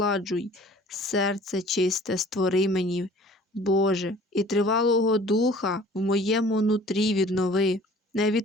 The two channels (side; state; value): both; normal; correlation 0.50